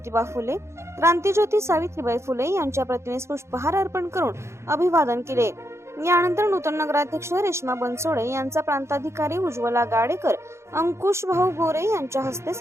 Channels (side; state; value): left; late; 0.13 ms